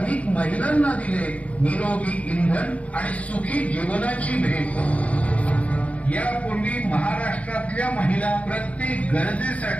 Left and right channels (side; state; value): right; late; 0.067 ms